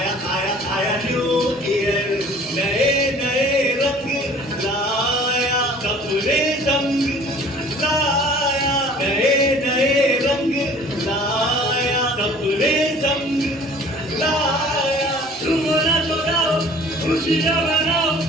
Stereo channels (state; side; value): normal; both; correlation 0.49